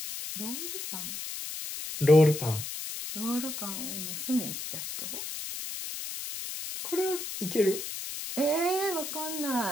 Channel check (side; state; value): left; noise; hiss, 7 dB below the sound